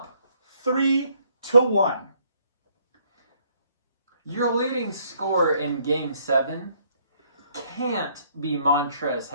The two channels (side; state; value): both; inverted; correlation -0.66